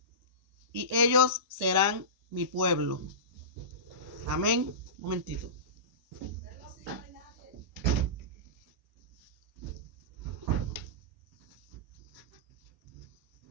y ellos serán mi pueblo. Amén. Un momentito.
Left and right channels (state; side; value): late; left; 1.1 ms